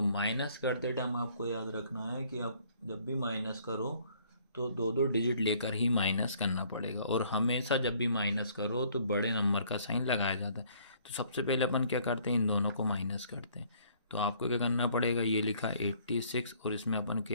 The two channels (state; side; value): inverted; both; correlation -0.61